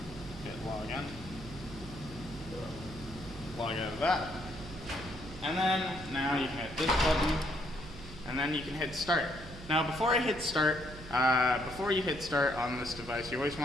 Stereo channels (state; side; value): noise; right; hum, 14 dB below the sound